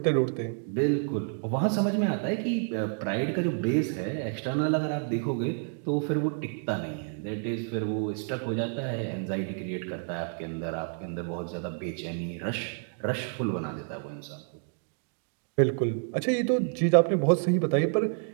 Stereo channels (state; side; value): silent; left; 56 dB below the other